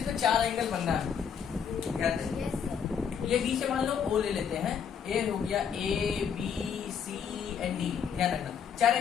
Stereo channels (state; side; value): quieter; right; 7.5 dB